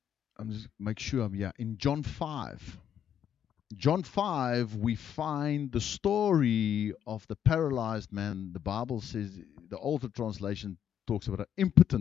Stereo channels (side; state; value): right; quieter; 9.2 dB